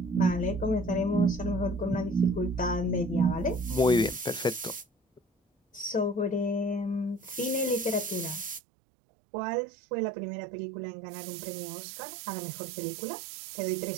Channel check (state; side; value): drops out; left; at 8.6 s